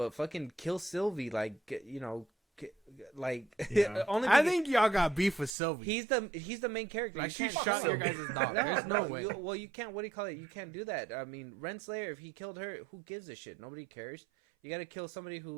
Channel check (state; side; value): drops out; left; at 5.6 s